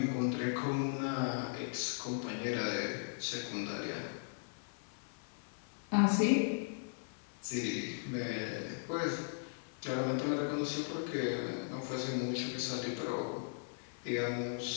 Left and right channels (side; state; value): right; silent; 53 dB below the other